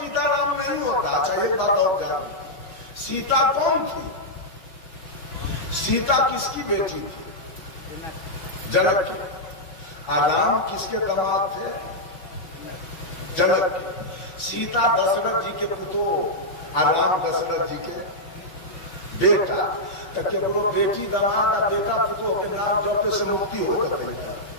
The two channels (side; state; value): right; late; 6.2 ms